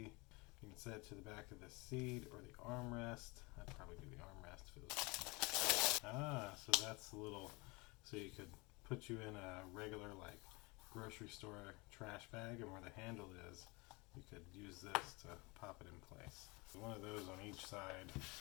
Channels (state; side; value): quieter; right; 26.3 dB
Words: You can set it to the back of the seat or the armrest. I'd probably do the armrest for this. So that's a little, so you could put you in a regular like grocery store trash bag, and where the handle is, you could use this to pop it in place. So one of those on each side.